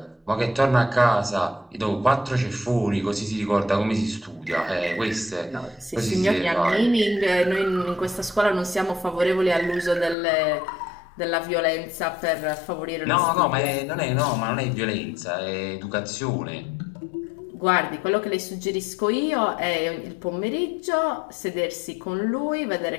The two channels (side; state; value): right; drops out; at 10.2 s